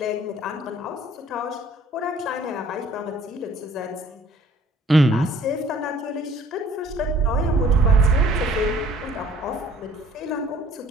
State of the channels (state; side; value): normal; both; correlation 0.55